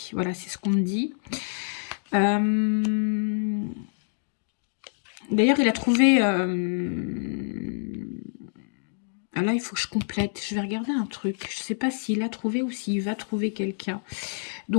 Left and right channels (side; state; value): right; silent; digital silence